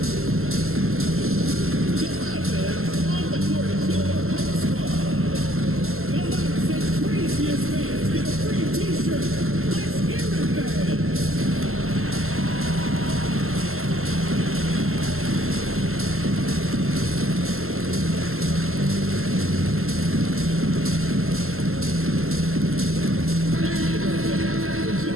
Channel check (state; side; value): late; left; 0.62 ms